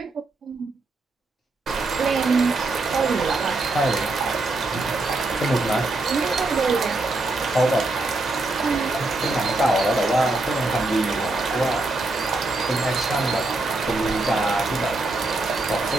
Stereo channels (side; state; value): left; quieter; 3.0 dB